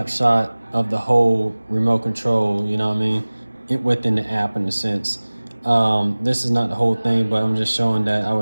of the whole remote control, you know what I mean, within the app in a sense. This is not the whole thing, but I'm just showing that I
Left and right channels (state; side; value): inverted; both; correlation -1.00